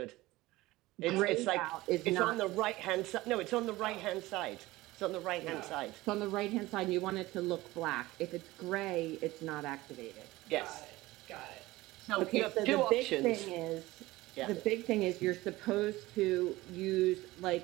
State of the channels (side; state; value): left; quieter; 18.8 dB